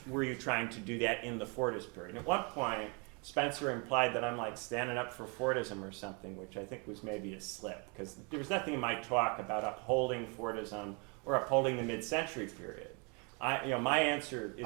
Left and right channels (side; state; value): left; quieter; 33.2 dB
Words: were you trying to do that in the Fordist period. And at one point, Spencer implied that I'm like standing up for Fordism or something, which I think was maybe a slip, because there was nothing in my talk about upholding Fordism or upholding the mid-century period. My answer